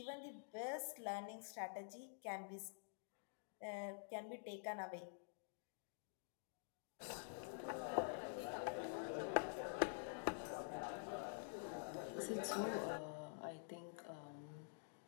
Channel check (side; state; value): right; silent; digital silence